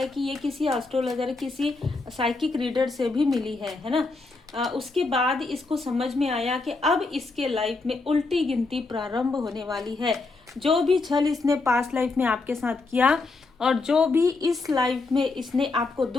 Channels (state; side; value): quieter; right; 3.7 dB